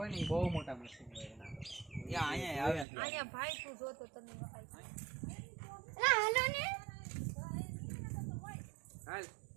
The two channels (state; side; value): drops out; left; at 2.9 s